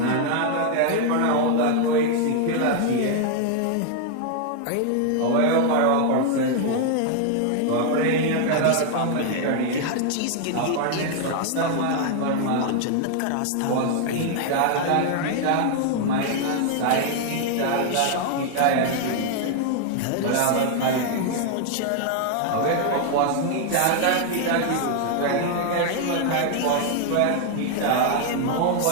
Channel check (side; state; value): both; different; correlation 0.00